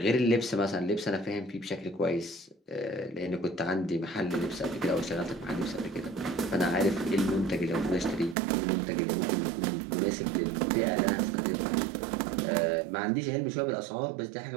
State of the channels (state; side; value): drops out; left; at 8.3 s